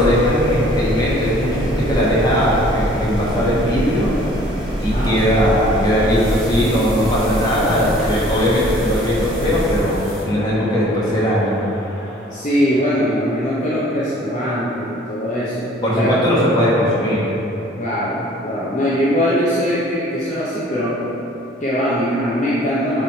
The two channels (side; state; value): both; normal; correlation 0.53